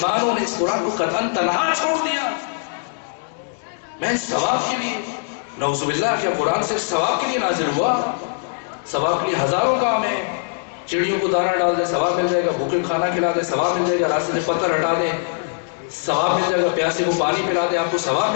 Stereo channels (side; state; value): right; silent; digital silence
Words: نے اس قرآن کو قطعاً تنہا چھوڑ دیا. میں ثواب کے لیے، نعوذ باللہ، کیا قرآن صرف ثواب کے لیے نازل ہوا؟ ثواب کے لیے ہزاروں کام ہیں. چڑیوں کو دانہ ڈال دیں ثواب مل جائے گا، بھوکے کو کھانا کھلا دیں ثواب مل جائے گا، راستے سے پتھر ہٹا دیں ثواب مل جائے گا، پیاسے کو پانی پلا دیں آپ کو ثواب